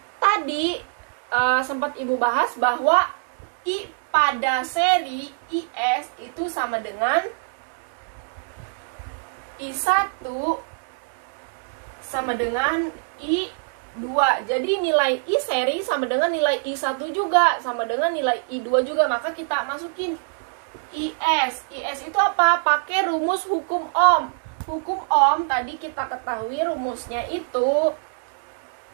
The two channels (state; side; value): silent; left; 63 dB below the other